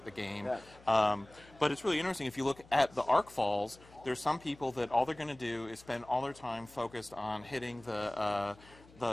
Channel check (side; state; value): left; noise; hum, 24 dB below the sound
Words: the game. But it's really interesting. If you look at the Arc Falls, there's some people that all they're going to do is spend all their time focused on hitting the